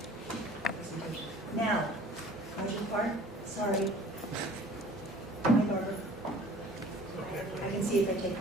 now, Roger Park, sorry. Hi, Barbara. I can see if I take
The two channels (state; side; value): normal; both; correlation 0.49